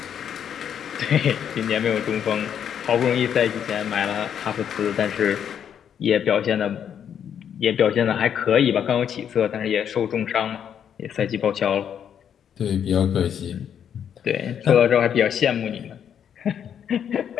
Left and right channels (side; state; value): right; quieter; 8.7 dB